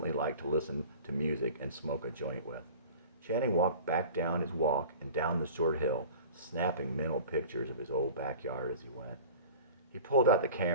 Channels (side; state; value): both; inverted; correlation -0.41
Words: like to listen to music and smoke a joint with. Channing walked back down his walk and down the short hill, snapping mental pictures of his old backyard as he went. He pulled out the